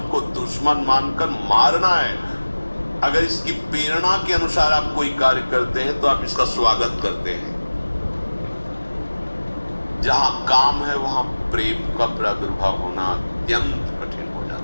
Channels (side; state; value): both; inverted; correlation -1.00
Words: को दुश्मन मानकर मारना है। अगर इसकी प्रेरणा के अनुसार आप कोई कार्य करते हैं तो आप इसका स्वागत करते हैं। जहां काम है वहां प्रेम का प्रादुर्भाव होना अत्यंत कठिन हो